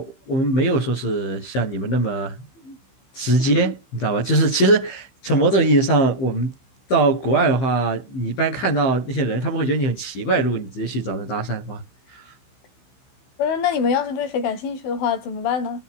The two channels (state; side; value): late; right; 15 ms